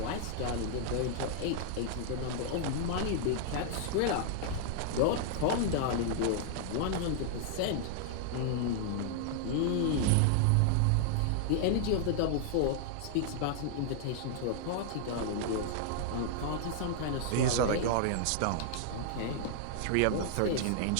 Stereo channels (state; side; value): different; both; correlation -0.01